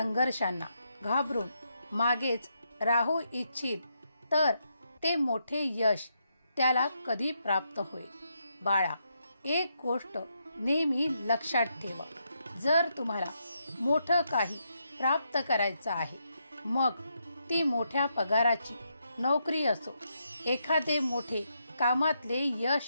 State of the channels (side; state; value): both; inverted; correlation -0.80